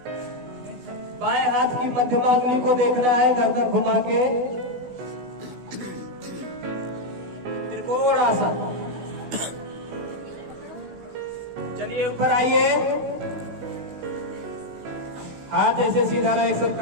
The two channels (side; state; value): left; late; 16 ms